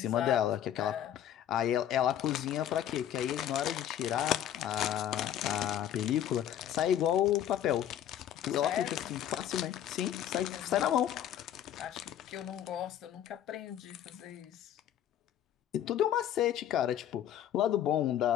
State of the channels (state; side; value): quieter; right; 10.7 dB